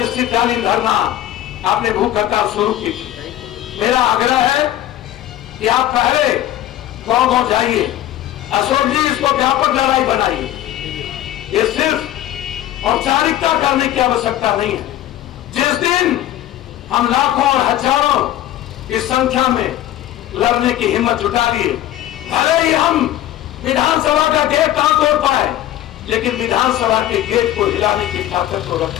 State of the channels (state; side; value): quieter; right; 13.2 dB